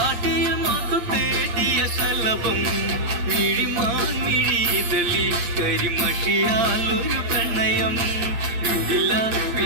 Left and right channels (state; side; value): late; left; 8.6 ms